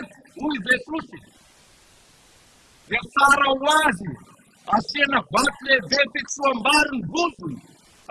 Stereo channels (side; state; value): both; identical; correlation 1.00